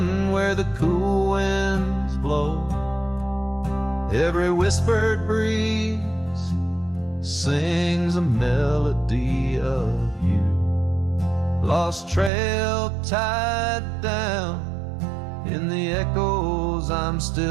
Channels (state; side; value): drops out; left; at 12.3 s